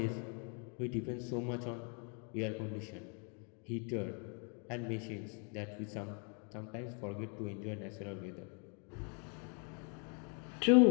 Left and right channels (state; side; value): quieter; right; 38.8 dB